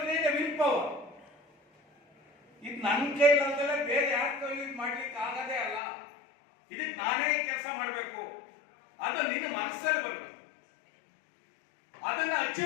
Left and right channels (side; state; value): right; drops out; at 5.8 s